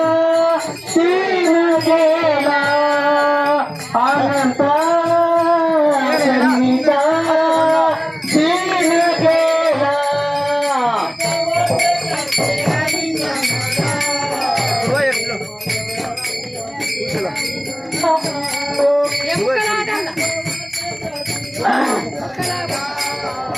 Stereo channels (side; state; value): both; identical; correlation 1.00